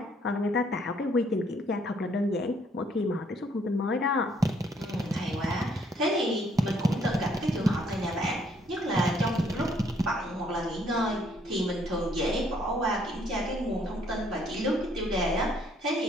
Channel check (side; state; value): both; normal; correlation 0.66